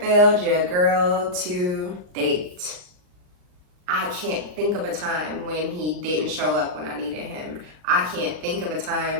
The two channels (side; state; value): left; late; 39 ms